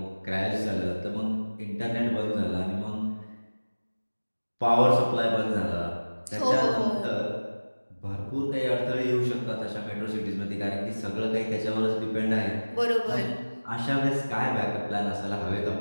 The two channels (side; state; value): both; inverted; correlation -1.00